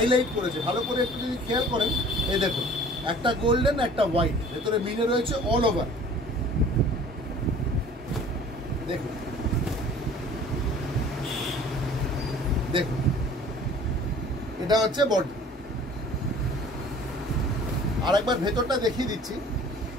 করেছে ভালো করে, একটু যদি খেয়াল করেন। এই দেখুন একটা গোল্ডেন, একটা হোয়াইট, ভেতরে মিনে রয়েছে অল ওভার। দেখুন দেখুন এটা হচ্ছে বডি। আর একবার ভেতরটা দেখিয়ে দিচ্ছি,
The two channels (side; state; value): both; normal; correlation 0.48